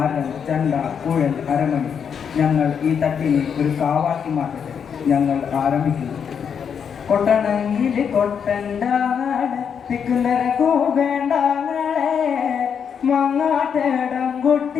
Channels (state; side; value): quieter; right; 7.3 dB